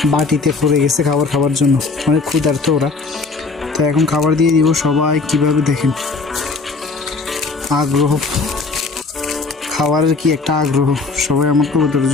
বাটিতে পড়ে গেছে খাবার জন্য, অনেক ক্ষুধার্ত ওরা। তো এখন খাবার দিয়ে দিব। সবাই কিভাবে দেখেন আগ্রহ, খাবারের কি একটা আগ্রহ। সবাই আমার কবুতরের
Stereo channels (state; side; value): quieter; right; 4.0 dB